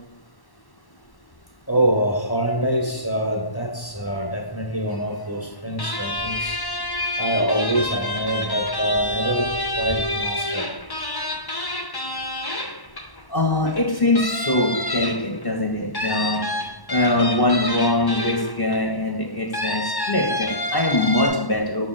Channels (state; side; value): late; right; 1.1 ms